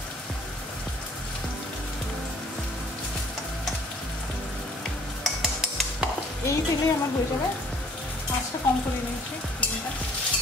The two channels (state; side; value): normal; both; correlation 0.57